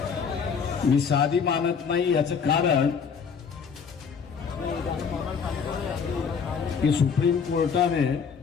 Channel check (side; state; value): right; quieter; 6.2 dB